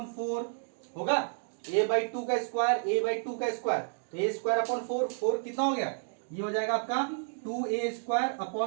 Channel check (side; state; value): left; silent; digital silence